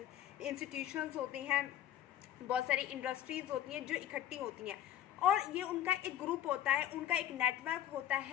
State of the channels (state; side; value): quieter; right; 11.6 dB